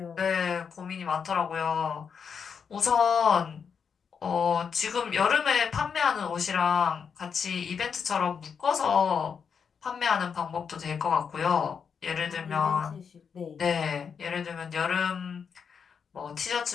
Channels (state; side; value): quieter; right; 6.5 dB